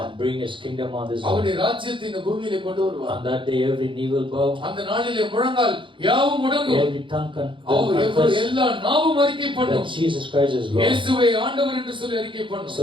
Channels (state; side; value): late; left; 0.24 ms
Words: And bring His kingdom on this அவருடைய earth. ராஜ்யத்தை இந்த பூமியிலே கொண்டு வருவார். On that day every knee will bow. அந்த நாளிலே முழங்கால் யாவும் முடங்கும். Every tongue confess. எல்லா நாவும் அறிக்கை பண்ணும். that Jesus Christ is Lord. இயேசுவை ஆண்டவர் என்று சொல்லி அறிக்கை பண்ணும்.